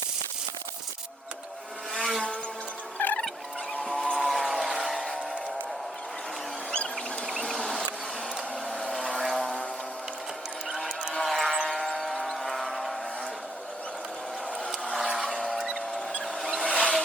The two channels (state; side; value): normal; both; correlation 0.72